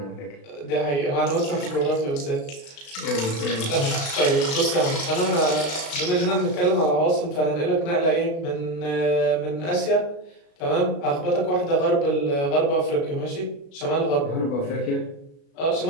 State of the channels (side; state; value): right; late; 36 ms